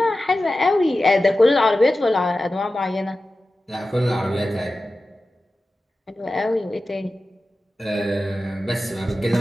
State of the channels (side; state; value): both; normal; correlation 0.94